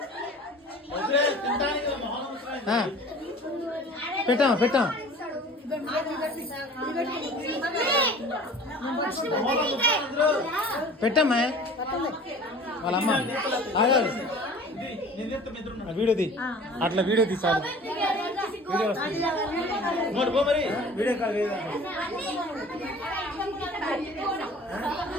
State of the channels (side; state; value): both; normal; correlation 0.44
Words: పెట్టాం పెట్టాం పెట్టమ్మా వాళ్ళ అమ్మ వీడియో తీ అట్లా వీడియో తీసాడు వీడియో వస్తుంది వీడియో కాల్